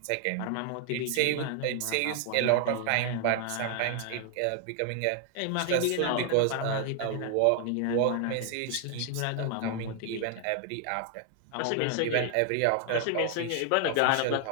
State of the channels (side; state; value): both; different; correlation 0.00